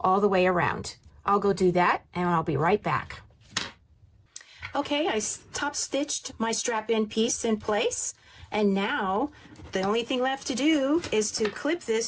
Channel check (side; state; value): both; identical; correlation 1.00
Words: the way around. I'll go do that and I'll be right back. Okay, I top stitched my strap end piece in place, and now the only thing left to do is to clip